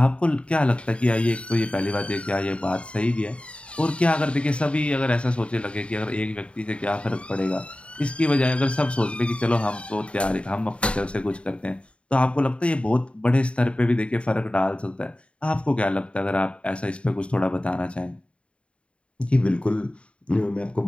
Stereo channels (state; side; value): late; right; 0.059 ms